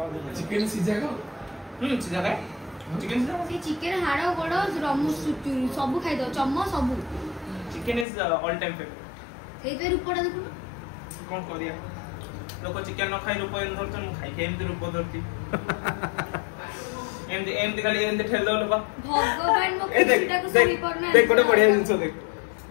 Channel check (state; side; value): drops out; right; at 8.1 s